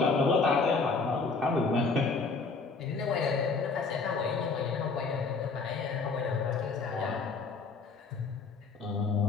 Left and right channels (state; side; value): quieter; right; 4.4 dB